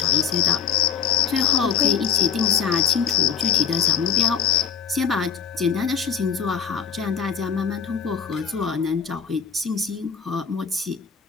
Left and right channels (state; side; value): quieter; right; 7.2 dB